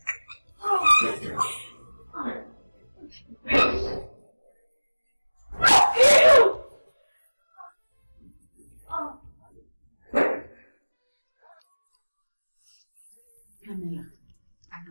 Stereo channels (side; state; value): both; inverted; correlation -1.00